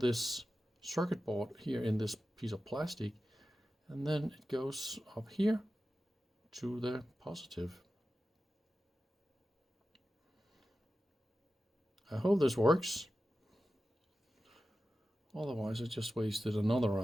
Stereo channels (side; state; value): both; normal; correlation 0.93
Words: circuit board here in this piece of plastic, and then it goes up here to the positive. I hope this works. Otherwise I just wasted another